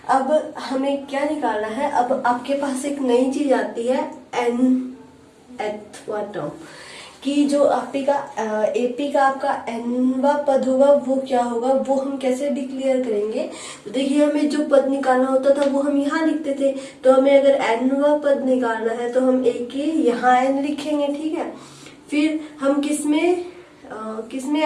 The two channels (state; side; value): identical; both; correlation 1.00